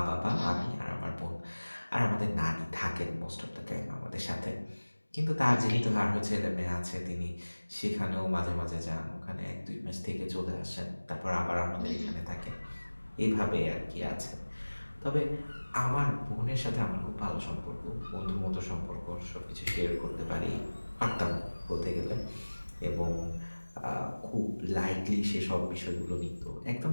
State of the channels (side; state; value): both; inverted; correlation -1.00